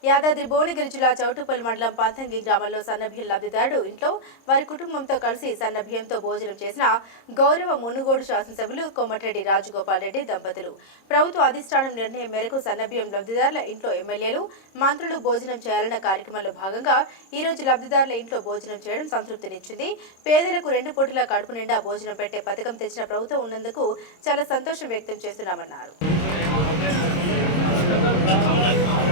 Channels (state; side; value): late; right; 26 ms